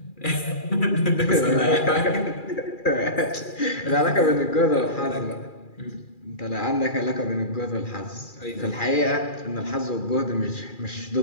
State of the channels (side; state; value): right; late; 2.4 ms